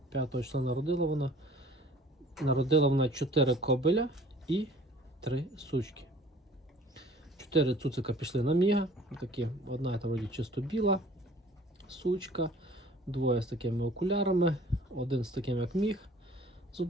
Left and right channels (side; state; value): both; normal; correlation 0.51